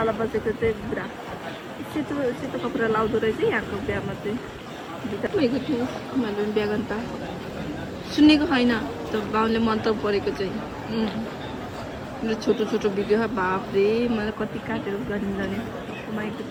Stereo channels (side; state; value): both; identical; correlation 1.00